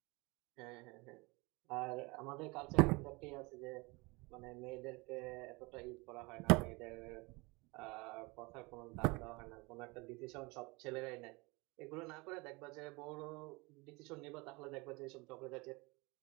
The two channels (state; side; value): quieter; left; 25.7 dB